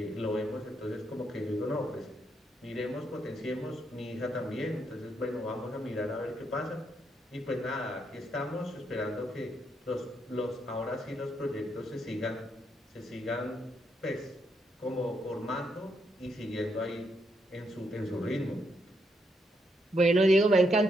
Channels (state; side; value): normal; both; correlation 0.78